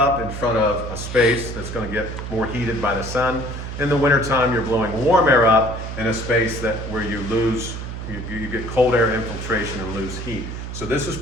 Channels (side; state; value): right; noise; hum, 7 dB below the sound